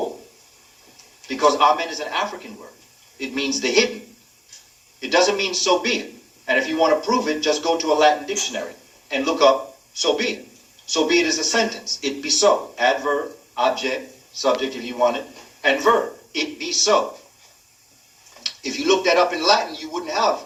Because Amen is an African word. It means the hidden. It doesn't mean so be it. And if you want to prove it, just go to a Latin dictionary and look up so be it. So be it is a sentence. It be so. Adverb, object, subject if you want it, and verb. It be so. If you look that up in Latin, you wouldn't have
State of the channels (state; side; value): identical; both; correlation 1.00